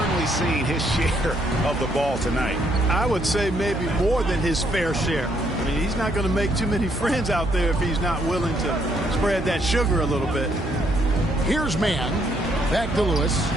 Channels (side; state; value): right; noise; hum, 8 dB below the sound